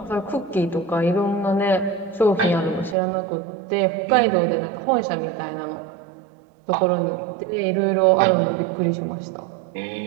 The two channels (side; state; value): left; drops out; at 3.0 s